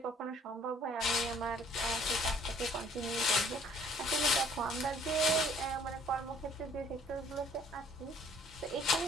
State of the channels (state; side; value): normal; both; correlation 0.58